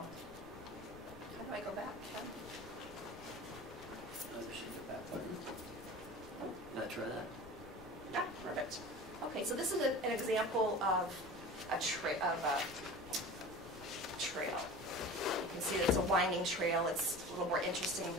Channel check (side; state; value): left; noise; rumble, 18 dB below the sound